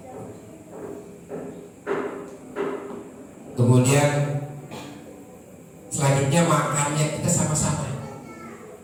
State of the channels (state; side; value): identical; both; correlation 1.00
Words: Kemudian selanjutnya makannya kita sama-sama.